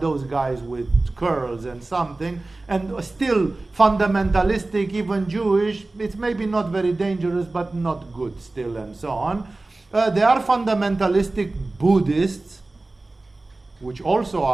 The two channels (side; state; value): left; quieter; 3.1 dB